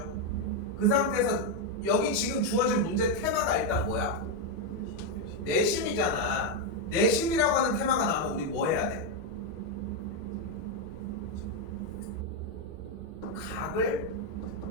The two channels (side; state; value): both; normal; correlation 0.03